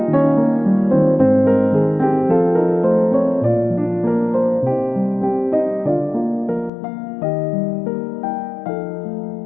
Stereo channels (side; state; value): right; drops out; at 6.7 s